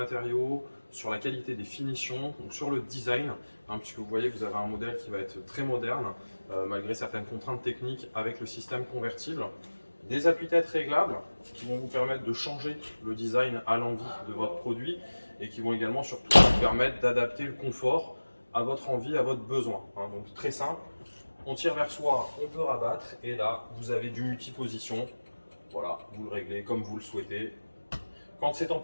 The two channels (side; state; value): both; inverted; correlation -1.00